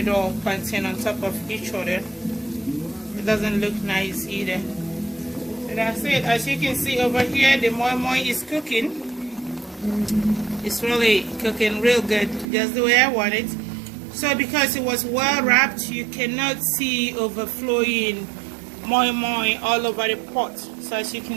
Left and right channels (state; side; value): drops out; left; at 12.5 s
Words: plantain on top of each other, it doesn't look nice either. So that's it. As you can see over here, the moi-moi is cooking. It's really cooking real good, just the way I want it. So because it was well wrapped, you cannot see overflowing moi-moi all over the pot. So as you